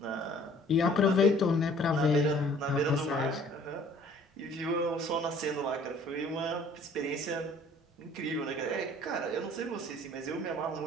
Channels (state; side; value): normal; both; correlation 0.54